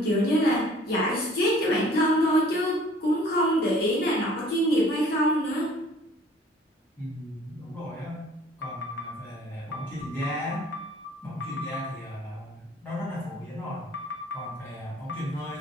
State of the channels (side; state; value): both; normal; correlation 0.53